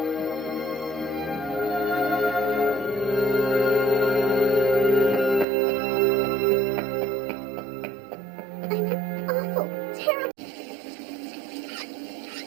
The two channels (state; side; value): drops out; left; at 5.5 s